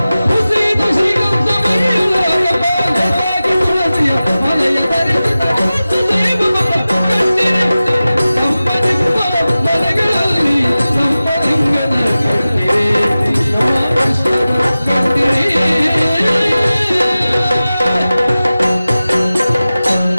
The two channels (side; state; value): both; inverted; correlation -0.96